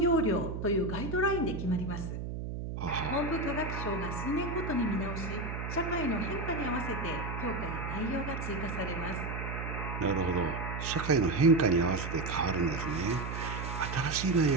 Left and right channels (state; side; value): noise; right; hum, 5 dB below the sound